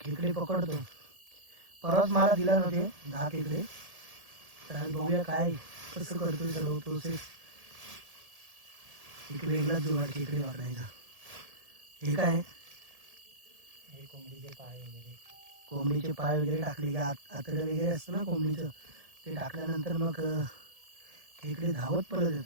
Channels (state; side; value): late; left; 1.8 ms